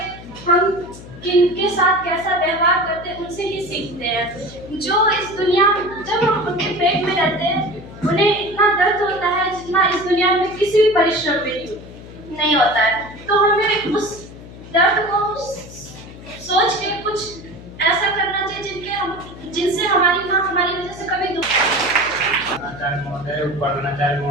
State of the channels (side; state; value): left; noise; hum, 16 dB below the sound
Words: किनके साथ कैसा व्यवहार करते हैं उनसे ही सीखते हैं। जो इस दुनिया, जब हम उनके पेट में रहते हैं, उन्हें इतना दर्द होता है जितना इस दुनिया में किसी भी परिश्रम में नहीं होता है। तो हमें उस दर्द को सोच के कुछ ऐसा करना चाहिए जिनसे हमारी माँ हमारी वजह से कभी आचार्य महोदय, उपाध्याय